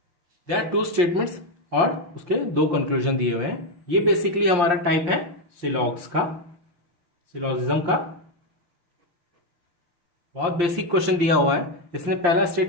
there are 2 statements और उसके 2 कंक्लूजन दिए हुए हैं। ये बेसिकली हमारा टाइप है सिलॉग्स का, सिलॉजिज्म का। बहुत बेसिक क्वेश्चन दिया हुआ है। इसमें पहला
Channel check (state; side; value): late; left; 5.7 ms